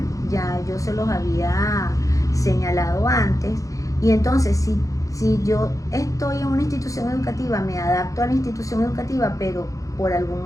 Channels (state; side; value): late; right; 0.16 ms